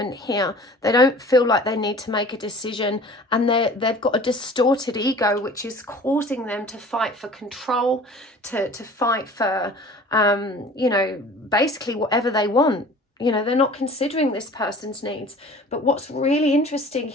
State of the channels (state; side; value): normal; both; correlation 0.45